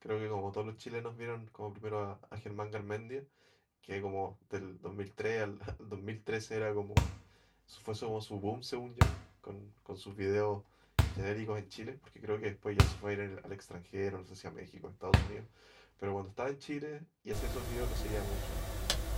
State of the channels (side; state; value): both; identical; correlation 1.00